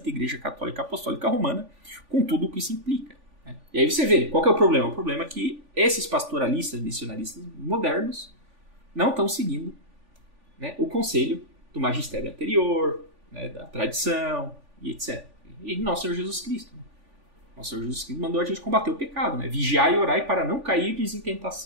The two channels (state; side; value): late; left; 3.5 ms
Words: Igreja Católica Apostólica Romana, com tudo o que isso implica. Né? E aí você vê, qual que é o problema? O problema é que esses pastoralistas, missionaristas modernos, não estão seguindo, né, o conselho do magistério anterior, né, da tradição, e etc. E Nosso Senhor Jesus Cristo. Né? Nosso Senhor Jesus Cristo mandou a gente combater o pecado, né? Vigiai e orai para não cair em